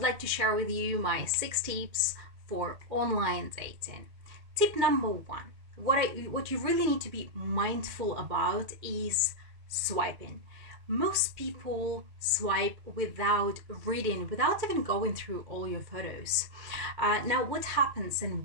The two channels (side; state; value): left; late; 1.8 ms